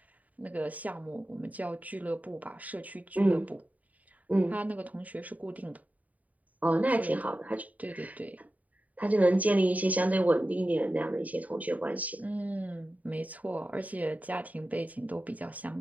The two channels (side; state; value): left; late; 0.072 ms